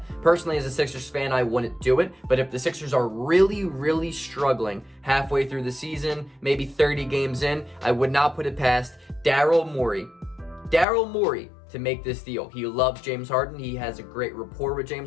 Personally, as a Sixers fan, I wouldn't do it. But if the Sixers are really struggling halfway through the season, maybe 30 games in, I would not put it past Daryl Morey to make this deal. He loves James Harden. He has a great rapport with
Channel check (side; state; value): right; drops out; at 10.9 s